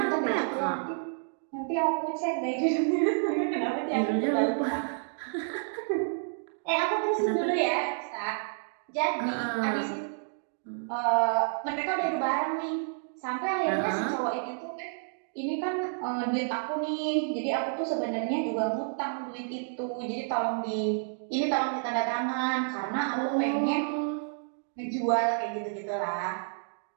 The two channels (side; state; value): left; silent; digital silence